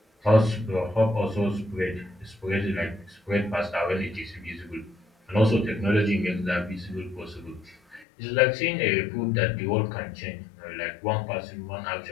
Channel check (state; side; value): drops out; right; at 8.1 s